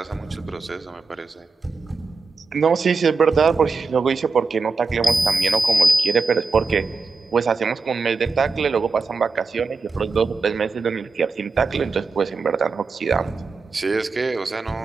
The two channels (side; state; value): left; quieter; 4.2 dB